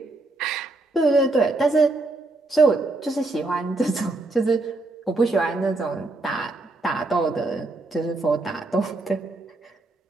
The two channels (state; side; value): quieter; left; 3.1 dB